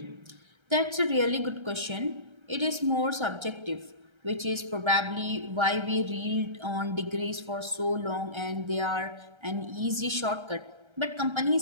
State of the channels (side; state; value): left; late; 1.3 ms